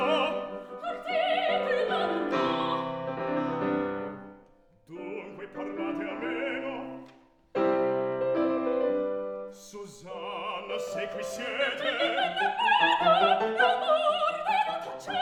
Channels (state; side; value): identical; both; correlation 1.00